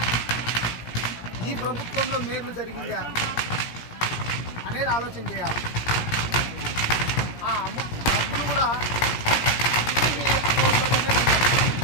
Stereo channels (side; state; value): right; late; 17 ms